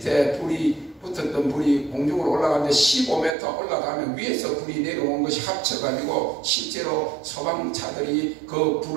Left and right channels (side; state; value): left; drops out; at 3.4 s